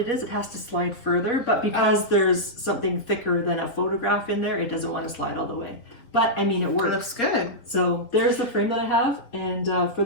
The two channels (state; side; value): late; right; 4.3 ms